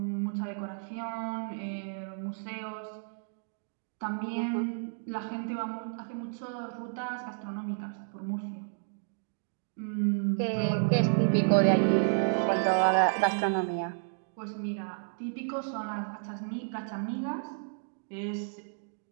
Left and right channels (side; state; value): left; silent; digital silence